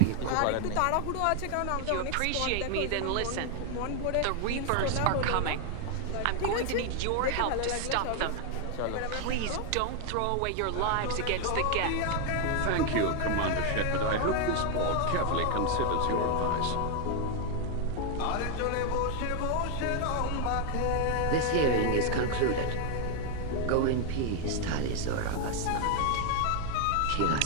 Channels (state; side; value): different; both; correlation 0.00